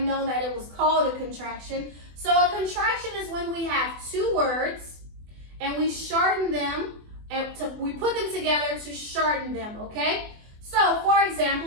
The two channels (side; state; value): left; late; 24 ms